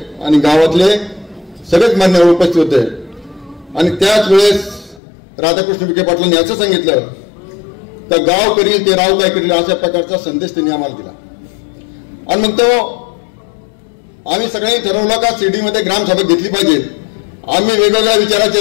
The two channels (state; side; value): drops out; right; at 5.0 s